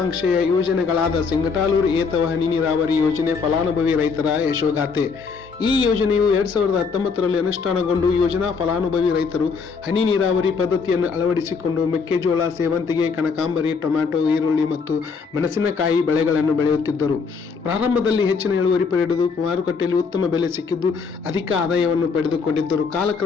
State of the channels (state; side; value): quieter; right; 5.2 dB